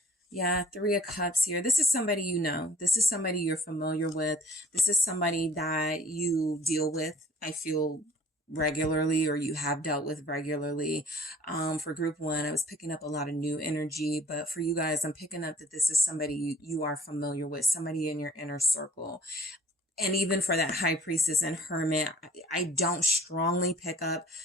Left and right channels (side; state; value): both; normal; correlation 0.53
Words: Yeah, 3 of Cups here. This is somebody you know. This is somebody you're familiar with. This is somebody that you deal with, I feel, regularly, or you have dealt with regularly. For group 1, I was picking up a lot of new energy, but for you guys, I'm picking up that this is somebody you are familiar with, somebody in your inner circle. And even for that High Priestess and Hermit, I don't strongly pick up